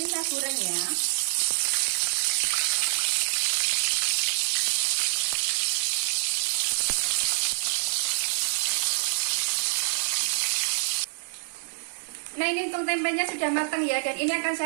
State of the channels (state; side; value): silent; left; digital silence